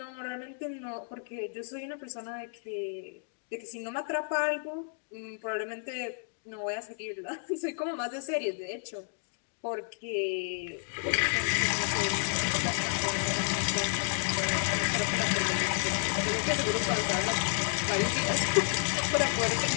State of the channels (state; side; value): silent; right; digital silence